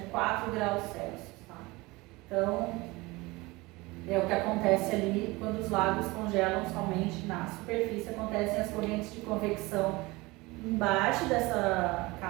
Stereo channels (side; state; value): left; quieter; 22.5 dB